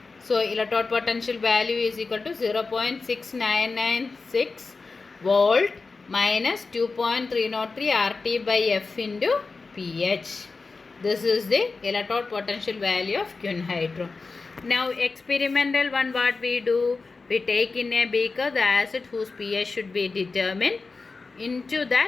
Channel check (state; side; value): quieter; right; 4.1 dB